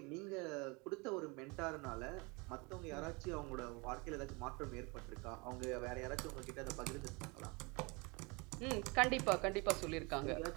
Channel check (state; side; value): quieter; left; 28.3 dB